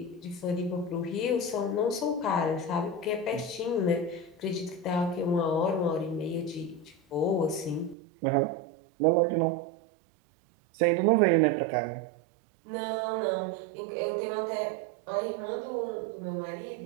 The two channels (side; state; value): left; drops out; at 8.0 s